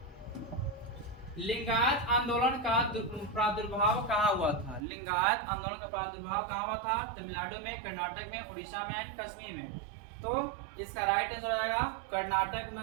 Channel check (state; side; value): drops out; left; at 4.9 s